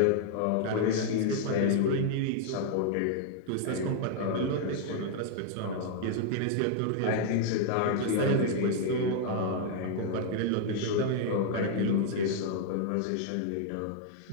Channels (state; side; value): different; both; correlation 0.00